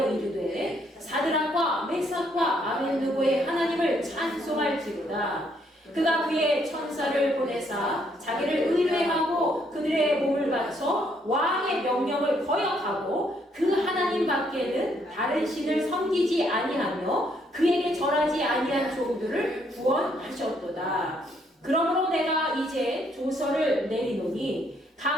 이르되 사드락과 메삭과 아벳느고의 하나님을 찬송할지로다. 그가 그의 천사를 보내사 자기를 의뢰하고 그들의 몸을 바쳐 왕의 명령을 거역하고 그 하나님 밖에는 다른 신을 섬기지 아니하며 그에게 절하지 아니한 종들을 구원하셨도다. 그러므로 내가 이제 조서를 내리노니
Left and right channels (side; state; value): both; normal; correlation 0.70